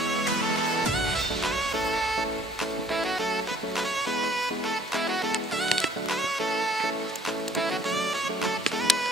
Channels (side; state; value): both; normal; correlation 0.57